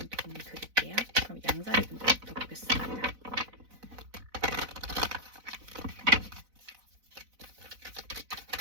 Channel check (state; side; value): late; left; 4.0 ms